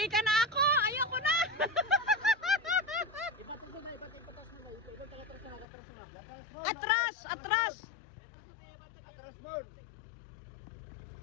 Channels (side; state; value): right; drops out; at 5.7 s